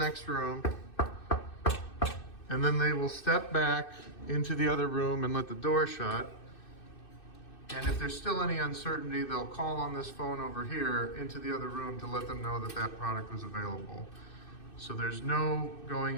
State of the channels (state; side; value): late; right; 2.6 ms